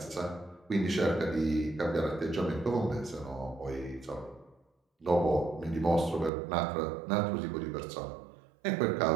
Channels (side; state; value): left; drops out; at 6.3 s